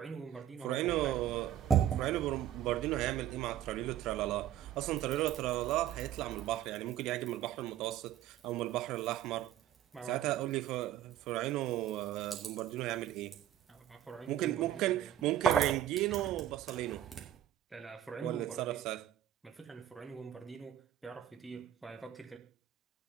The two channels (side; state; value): left; quieter; 11.4 dB